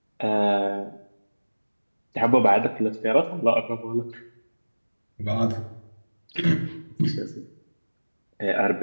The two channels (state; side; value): inverted; both; correlation -1.00